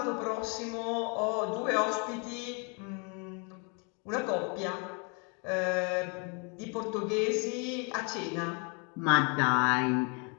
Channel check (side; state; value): right; quieter; 35.5 dB